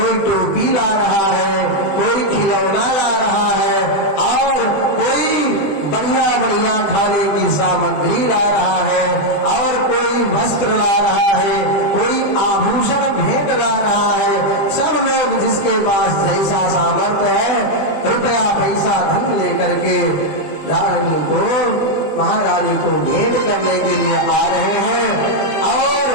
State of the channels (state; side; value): late; right; 20 ms